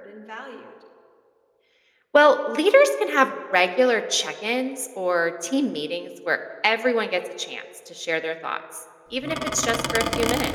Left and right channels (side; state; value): both; identical; correlation 1.00